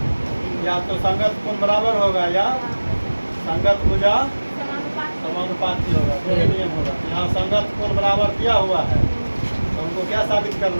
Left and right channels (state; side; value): inverted; both; correlation -1.00